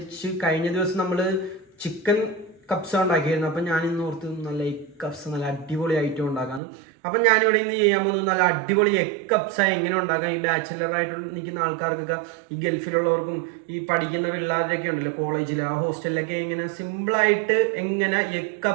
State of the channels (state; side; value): drops out; left; at 6.6 s